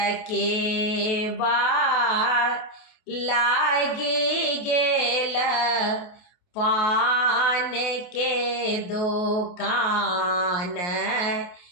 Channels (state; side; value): late; right; 28 ms